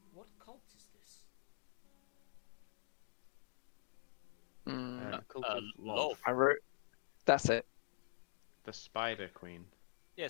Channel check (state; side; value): silent; right; digital silence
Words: What cult is this? Cult of Lolth. I wrote. That's it. The Spider Queen. Yeah,